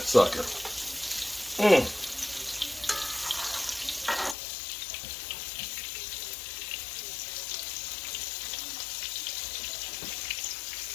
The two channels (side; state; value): right; drops out; at 4.4 s